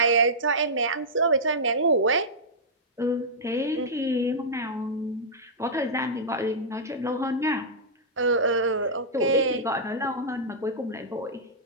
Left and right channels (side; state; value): both; normal; correlation -0.11